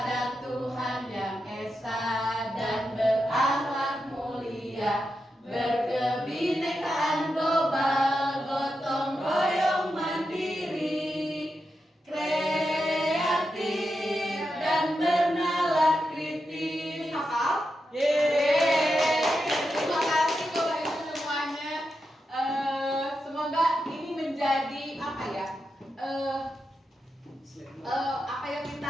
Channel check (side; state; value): both; normal; correlation 0.88